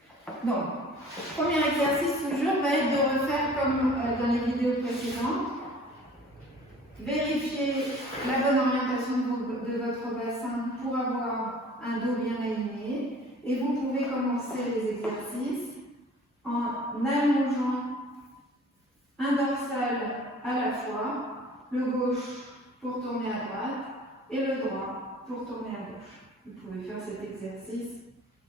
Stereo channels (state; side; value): normal; both; correlation 0.49